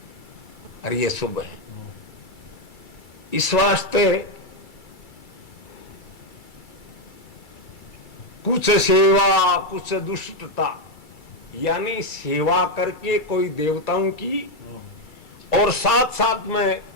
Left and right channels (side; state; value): right; late; 2.3 ms